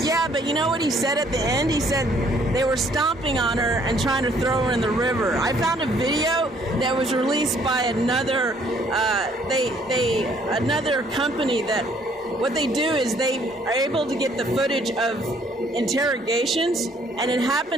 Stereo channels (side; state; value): both; normal; correlation 0.63